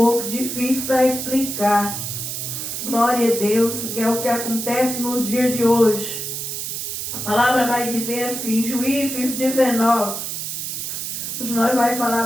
difícil para explicar. Glória a Deus, que é o que acontece nos dias de hoje. A palavra vai dizer assim, Juízes 19. Hoje nós vamos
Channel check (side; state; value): right; noise; hiss, 4 dB below the sound